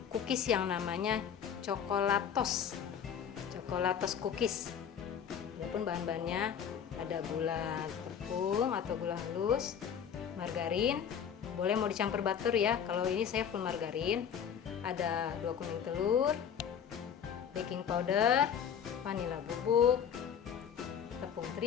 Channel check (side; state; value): right; quieter; 8.1 dB